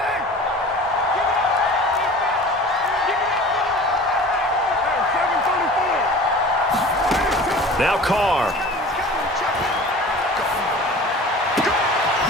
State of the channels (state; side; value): normal; both; correlation 0.41